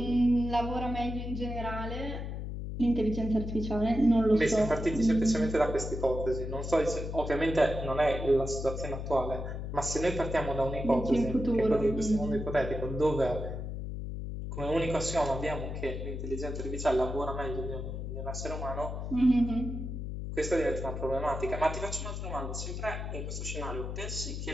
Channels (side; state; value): left; noise; hum, 5 dB below the sound